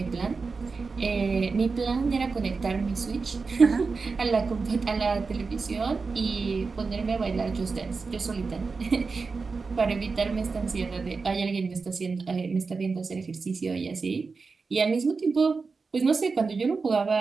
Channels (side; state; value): left; quieter; 4.5 dB